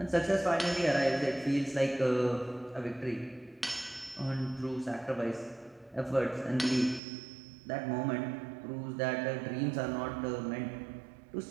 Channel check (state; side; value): drops out; left; at 7.0 s